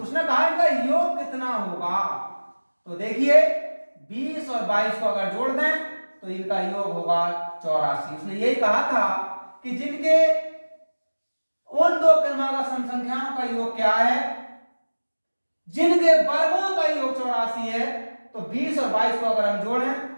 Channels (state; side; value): inverted; both; correlation -1.00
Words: कहा इनका योग कितना होगा? तो देखिए 20 और 22 को अगर जोड़ दें तो इनका योग होगा 84। उसने यही कहा था कि जिनके उन दो क्रमागत सम संख्याओं का योग क्या है, जिनके वर्गों का योग 84 है, तो 20 और 22 को अगर हम जोड़ें